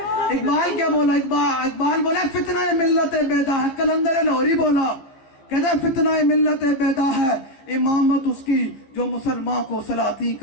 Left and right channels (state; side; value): late; right; 15 ms